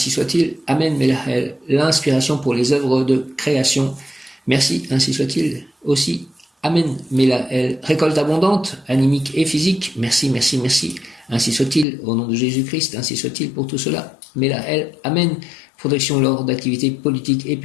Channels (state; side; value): drops out; right; at 11.9 s